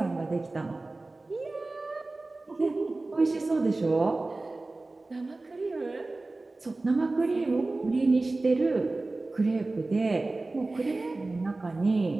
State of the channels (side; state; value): left; quieter; 3.2 dB